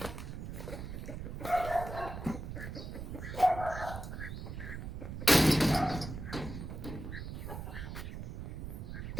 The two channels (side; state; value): right; noise; rumble, 7 dB below the sound